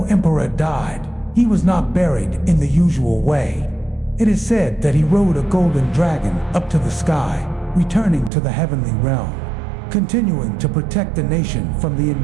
Emperor died, he was not buried in the usual way. It is said that he rode a golden dragon up to the sky, returning to the heavenly realm, continuing to protect the nation from the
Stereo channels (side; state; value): left; drops out; at 8.3 s